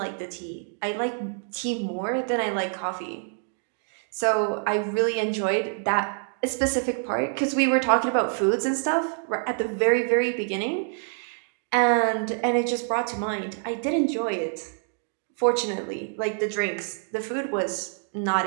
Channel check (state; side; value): silent; left; 59 dB below the other